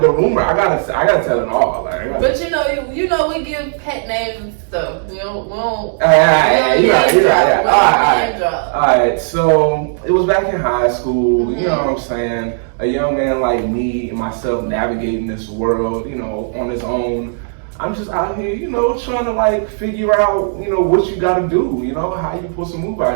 the rumor, I gotta tell it all. Like, but you know, we give pet names and stuff. We don't. You're right. All right. So it was back in high school. You know what I'm saying? A young man like me and myself navigating this world, you know, on his own. I'm just out here, you know, trying to like figure out, you know, what you gotta do. You know, how you supposed to move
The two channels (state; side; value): silent; left; digital silence